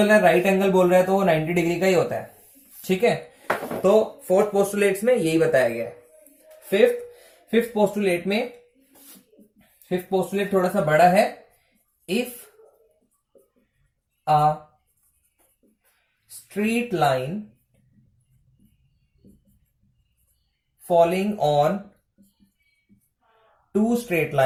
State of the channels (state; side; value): identical; both; correlation 1.00